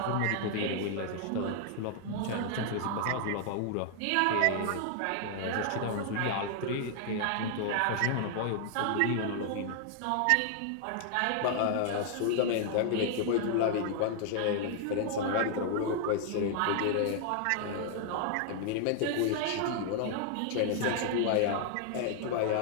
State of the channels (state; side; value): different; both; correlation 0.00